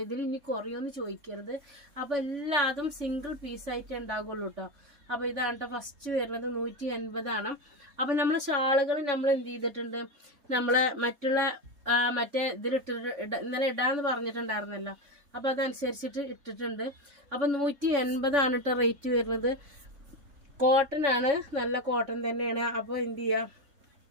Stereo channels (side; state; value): left; late; 3.5 ms